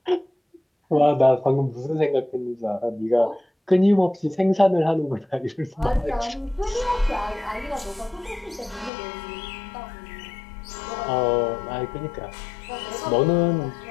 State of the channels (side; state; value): right; drops out; at 8.9 s